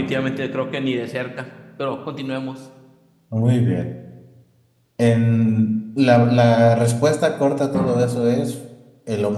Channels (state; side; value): identical; both; correlation 1.00